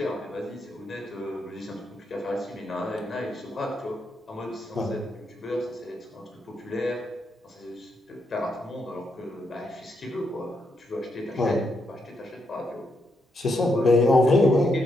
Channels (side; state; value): both; normal; correlation 0.80